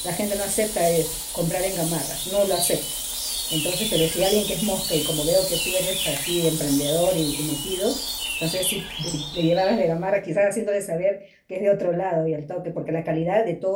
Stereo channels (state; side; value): identical; both; correlation 1.00